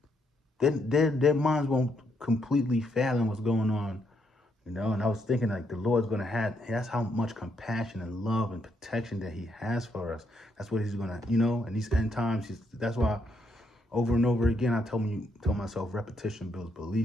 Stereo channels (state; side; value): normal; both; correlation 0.76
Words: their minds won't completely fathom what's going on. And I was thinking, like, the Lord's going to that's how much compassion and love and protection that he has for us. That's what he's going to, in these end times, that's why over and over again, I tell myself, repetition builds